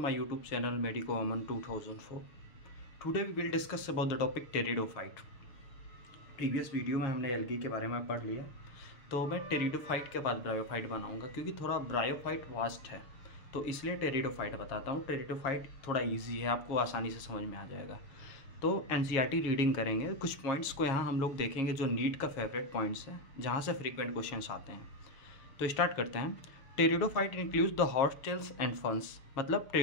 YouTube channel Medico Aman 2004. Today we will discuss about the topic pteridophyte. Previous video में हमने algae के बारे में पढ़ लिया, तो मैं टेरिडोफाइट के बाद ब्रायोफाइट बनाऊंगा क्योंकि थोड़ा ब्रायोफाइट वास्ट है, तो इसलिए टेरिडोफाइट बताता हूँ. टेरिडोफाइट थोड़ा इजी है, आपको आसानी से समझ में आ जाएगा. तो एनसीईआरटी रीडिंग करेंगे, कुछ पॉइंट्स को यहाँ हम लोग देखेंगे जो नीट का फेवरेट पॉइंट्स है, जहाँ से फ्रीक्वेंट क्वेश्चंस आते हैं. तो स्टार्ट करते हैं. Pteridophyte includes the hostels and फंस. मतलब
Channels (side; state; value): right; late; 7.4 ms